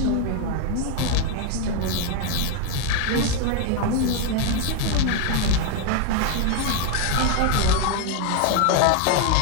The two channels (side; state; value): both; different; correlation 0.01